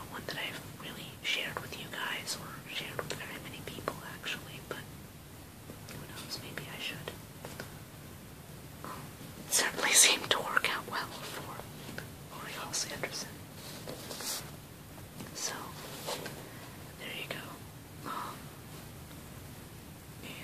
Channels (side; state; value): both; identical; correlation 1.00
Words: one that I've really shared with you guys or shared with very many people, actually, but who knows, maybe I should. It certainly seemed to work out well for Laurie Halse Anderson. So, there you go.